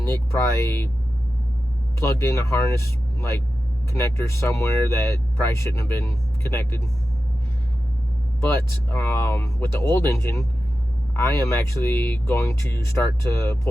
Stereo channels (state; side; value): normal; both; correlation 0.93